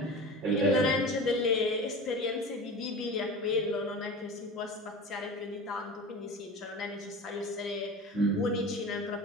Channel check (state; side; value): normal; both; correlation 0.32